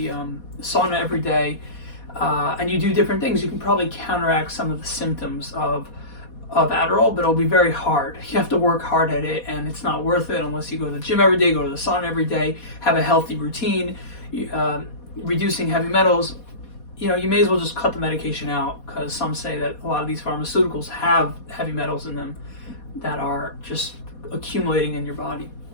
sauna every day, and you do different things, you can probably counteract some of the symptoms of Adderall, but it'll be very hard. You have to work hard at it, and it's not worth it unless you go to the gym every day, go to the sauna every day, have a healthy routine, reducing heavy metals. You may as well just cut the medication out, because some say that a lot of these pharmaceuticals have heavy metals in them that are just accumulating in your body.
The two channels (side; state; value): right; late; 4.2 ms